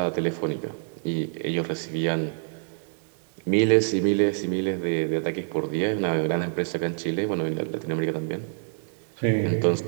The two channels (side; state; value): left; silent; digital silence